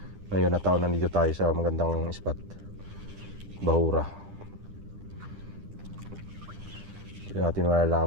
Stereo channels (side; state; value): left; late; 10 ms